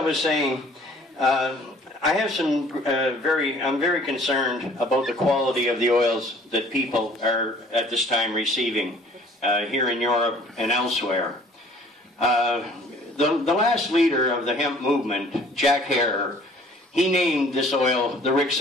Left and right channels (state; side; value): normal; both; correlation 0.54